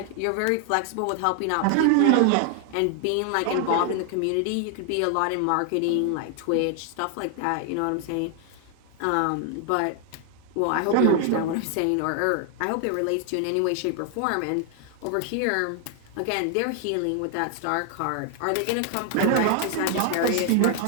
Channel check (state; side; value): different; both; correlation 0.00